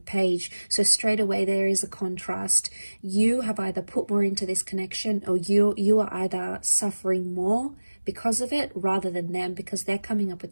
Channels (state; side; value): inverted; both; correlation -1.00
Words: So straight away there is a contrast. You have either put more into this connection, or you are either suffering more because of it rather than them, because they're coming up